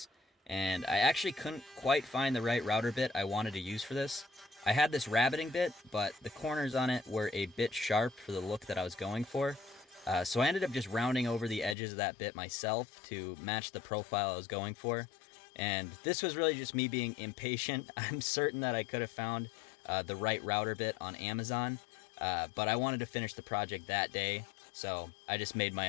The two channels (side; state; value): right; drops out; at 11.8 s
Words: and I actually couldn't quite find the right router bit I wanted to use for this. I had this rabbiting bit, but the corners on it were a bit sharp for the look that I was going for. So I ended up just rounding over the edges of that bit myself to match the profile I was going for. And this was really just me being impatient. I'm certain that I could have found the right router bit on Amazon, but I wanted to finish the project that day, so I just made